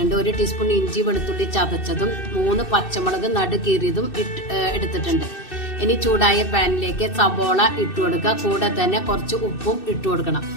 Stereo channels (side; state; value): right; late; 2.6 ms